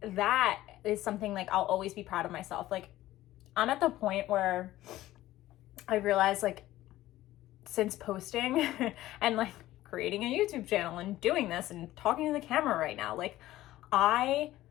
that is something like I'll always be proud of myself. Like I'm at the point where I realized like since posting and like creating a YouTube channel and doing this and talking to the camera right now, like I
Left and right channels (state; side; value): quieter; right; 15.4 dB